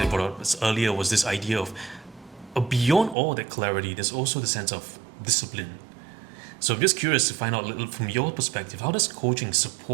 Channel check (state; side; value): drops out; left; at 3.2 s